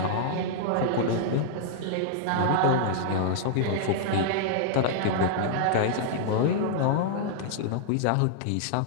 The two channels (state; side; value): different; both; correlation -0.01